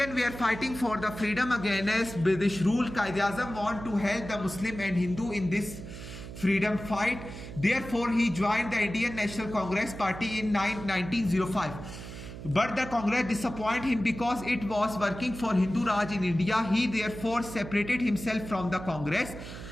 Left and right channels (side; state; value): right; noise; hum, 11 dB below the sound